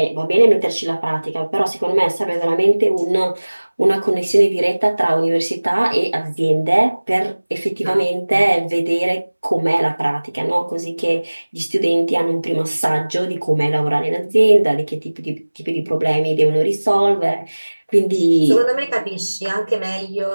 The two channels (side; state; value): both; inverted; correlation -1.00